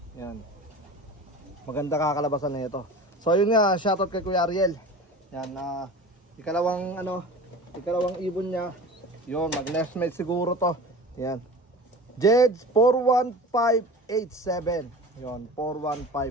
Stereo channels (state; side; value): normal; both; correlation 0.36